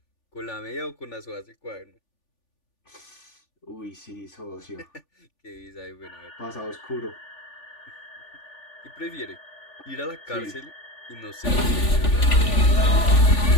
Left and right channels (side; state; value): right; late; 3.4 ms